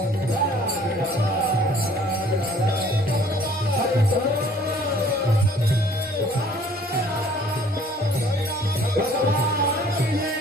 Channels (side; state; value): both; normal; correlation 0.56